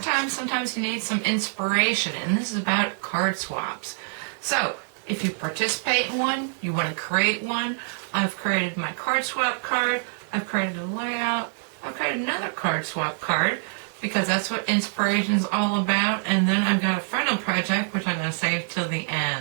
sometimes you need some inspiration, and this is about card swaps. So, if you participate in one, you want to create one, I've created my card swap card, I've created a layout, I've created another card swap card, because that's what inspiration is all about, and then I've got a final project, which I'm going to save till the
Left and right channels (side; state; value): left; silent; 61 dB below the other